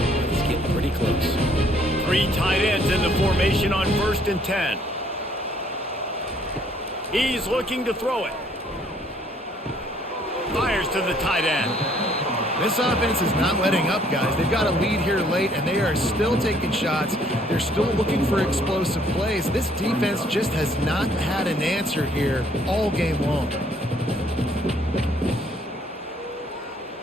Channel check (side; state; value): both; normal; correlation 0.64